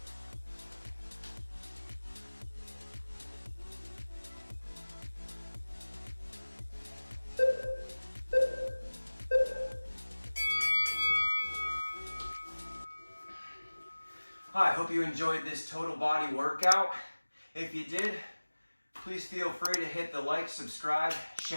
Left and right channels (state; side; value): inverted; both; correlation -1.00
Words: Hi, I hope you enjoyed this total body workout. If you did, please feel free to hit the like, subscribe,